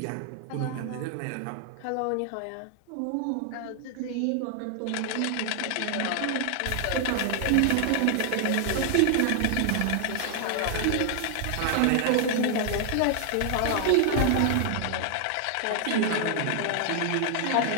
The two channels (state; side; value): different; both; correlation 0.00